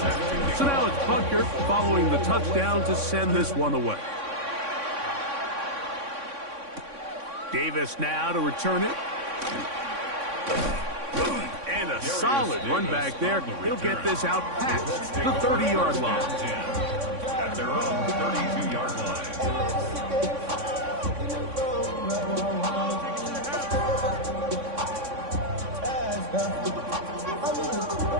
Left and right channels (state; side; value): late; left; 3.6 ms